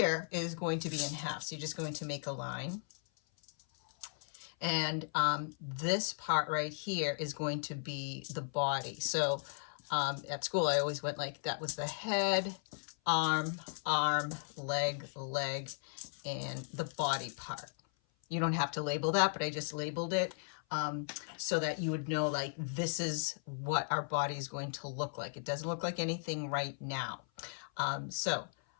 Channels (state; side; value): silent; right; 53 dB below the other